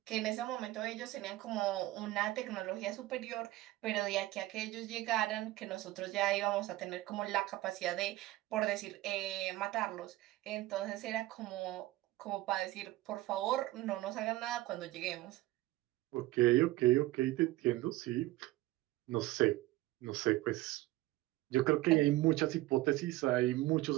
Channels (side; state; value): left; quieter; 17.6 dB